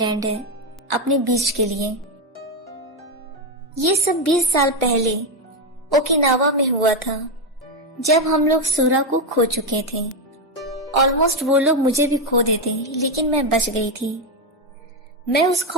है अपने बीच के लिए। ये सब 20 साल पहले ओकिनावा में हुआ था, जब हम लोग सूरा को खो चुके थे। ऑलमोस्ट वो लोग मुझे भी खो देते, लेकिन मैं बच गई थी। मैं उस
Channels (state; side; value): normal; both; correlation 0.07